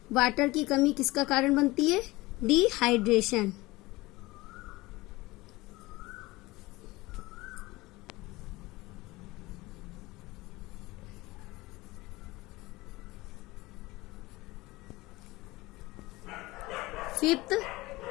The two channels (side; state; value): right; quieter; 20.6 dB